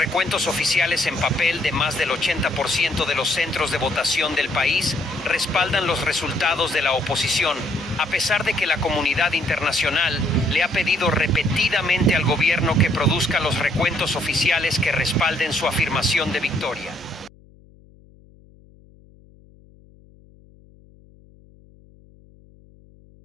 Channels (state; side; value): noise; left; hum, 27 dB below the sound